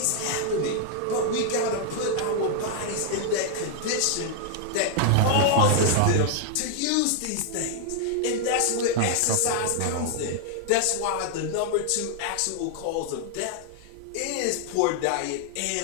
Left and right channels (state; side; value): different; both; correlation 0.00